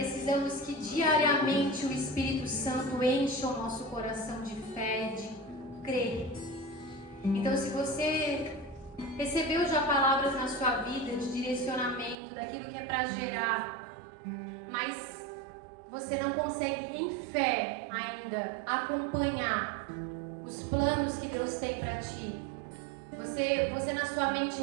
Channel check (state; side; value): drops out; left; at 12.2 s